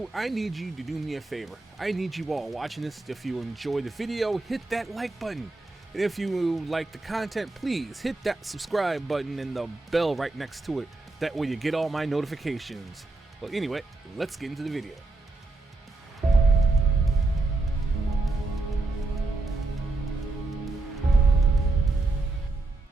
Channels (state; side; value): quieter; left; 3.2 dB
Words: I need you to do me a favor. I need you all watching this, if you enjoy the video, hit that like button. And if you like the content, please hit that subscribe button and the bell right next to it. That way you get all my notifications. Well, anyway, let's get into the video.